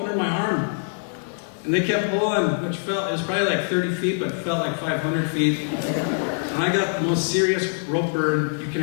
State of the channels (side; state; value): right; silent; digital silence